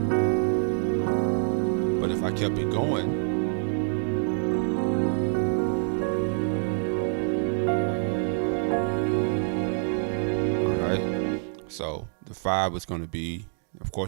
But if I kept it going, so the 5 is going to be, of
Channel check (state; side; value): silent; left; digital silence